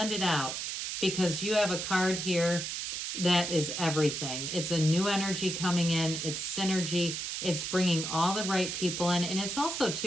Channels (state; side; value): noise; right; hiss, 4 dB below the sound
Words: it out. Because you have a card here that is everything. It's a new energy coming in. It's synergy. It's bringing all the right people in. And it's also,